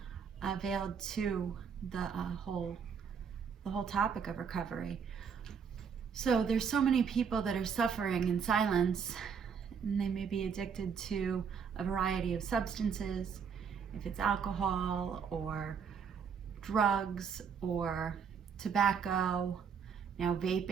availed to the whole topic of recovery. So there's so many people that are suffering in silence, and they may be addicted to a variety of substances, if it's alcohol or drugs or tobacco. Now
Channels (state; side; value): quieter; left; 6.6 dB